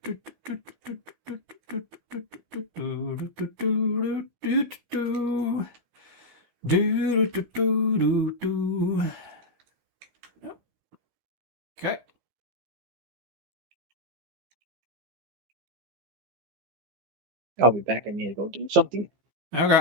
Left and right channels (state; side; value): late; left; 15 ms